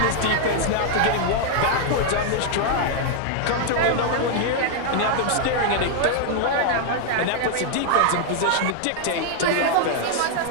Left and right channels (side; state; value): both; different; correlation 0.00